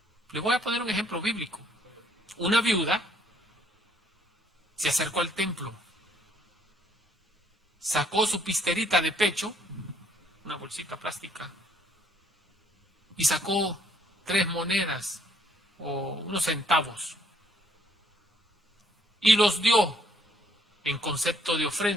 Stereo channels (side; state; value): both; normal; correlation 0.65